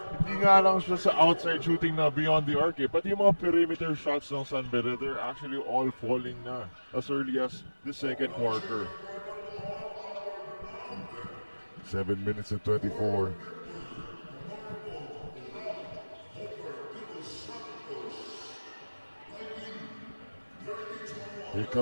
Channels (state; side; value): inverted; both; correlation -1.00